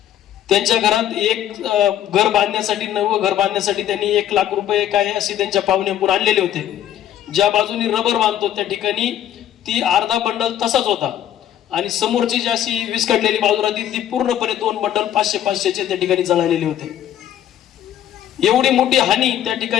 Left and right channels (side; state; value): right; quieter; 11.1 dB